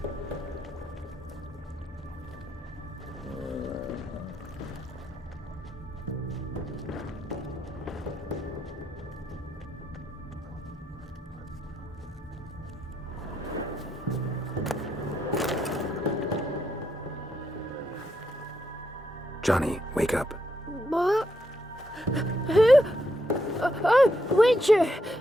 Johnny, wake up. What? Who? Oh, Witcher!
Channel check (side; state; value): both; normal; correlation 0.79